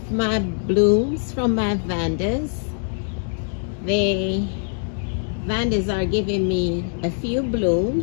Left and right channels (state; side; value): silent; right; digital silence